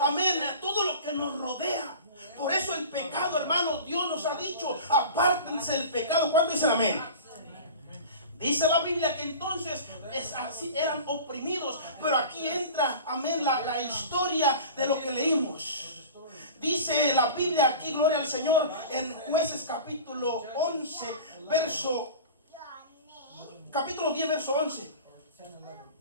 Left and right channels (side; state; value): both; inverted; correlation -0.36